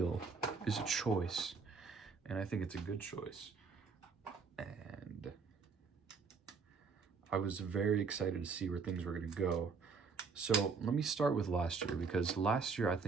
is a choice, and I think it's a good choice. And I was very excited to see where things were going to go. So let me start with last year, because last year I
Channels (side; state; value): left; quieter; 5.1 dB